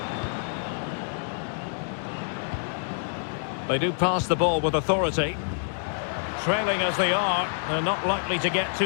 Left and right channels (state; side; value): silent; right; digital silence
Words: They do pass the ball with authority. Trailing as they are, they're not likely to get